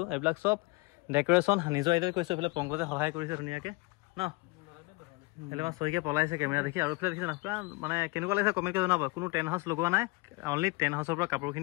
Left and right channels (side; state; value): right; quieter; 25.5 dB